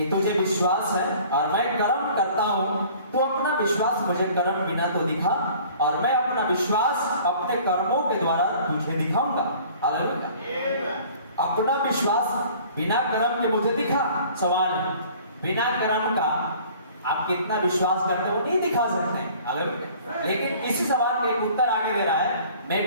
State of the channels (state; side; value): inverted; both; correlation -0.50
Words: तुझे विश्वास है और मैं कर्म करता हूं, तो अपना विश्वास मुझे कर्म बिना तो दिखा, और मैं अपना विश्वास अपने कर्मों के द्वारा तुझे दिखाऊंगा। हालेलुया। अपना विश्वास बिना कर्म के मुझे दिखा। सवाल है, बिना कर्म का आप कितना विश्वास करते हो नहीं दिखा सकते। हालेलुया। लेकिन इसी सवाल का एक उत्तर आगे दे रहा है, मैं